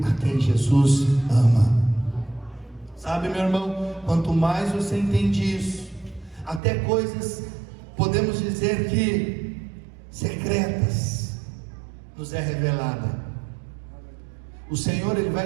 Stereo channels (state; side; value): drops out; left; at 6.6 s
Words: a quem Jesus ama. Sabe, meu irmão, quanto mais você entende isso, até coisas, podemos dizer que secretas, nos é revelada. O Senhor, Ele